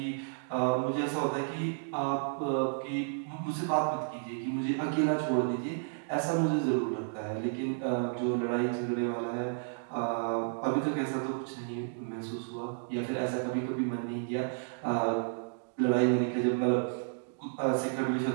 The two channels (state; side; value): silent; left; digital silence